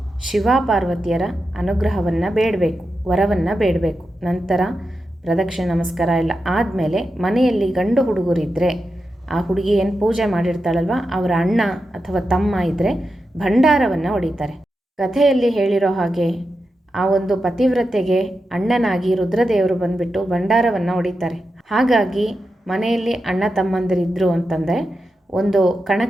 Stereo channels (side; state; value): both; normal; correlation 0.89